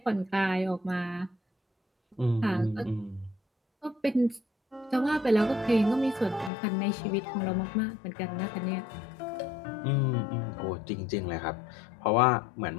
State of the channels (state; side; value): drops out; right; at 6.5 s